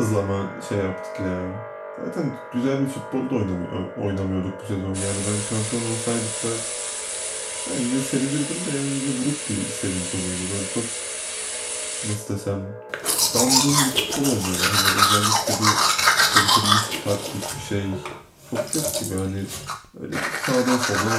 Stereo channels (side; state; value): both; identical; correlation 1.00